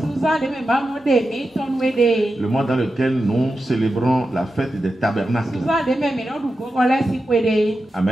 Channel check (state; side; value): normal; both; correlation 0.91